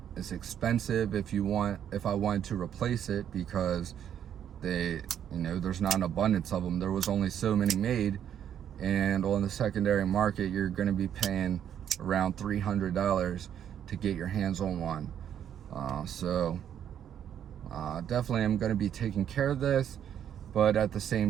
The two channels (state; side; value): quieter; left; 9.5 dB